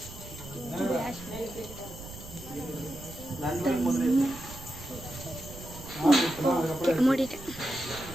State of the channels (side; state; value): right; noise; rumble, 14 dB below the sound